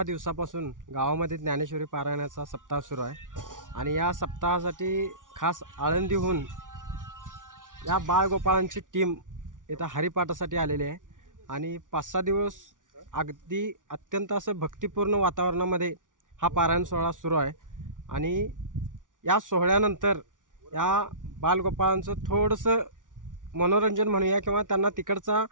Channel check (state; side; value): late; left; 0.88 ms